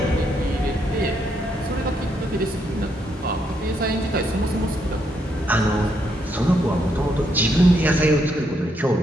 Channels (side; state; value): both; normal; correlation 0.76